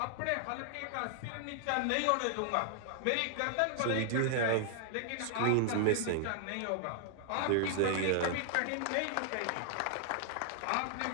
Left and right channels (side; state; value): both; different; correlation -0.01